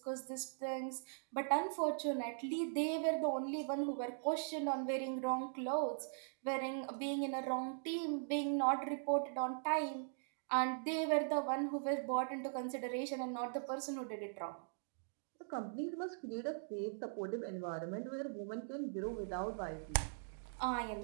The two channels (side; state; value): left; silent; digital silence